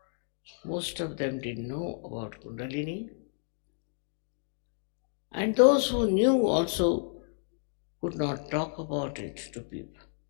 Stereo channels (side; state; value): right; silent; 57 dB below the other